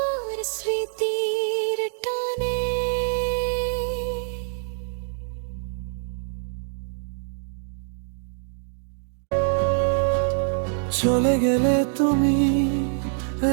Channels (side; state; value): left; silent; digital silence